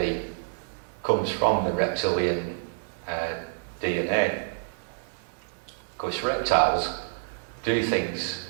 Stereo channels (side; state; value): left; silent; digital silence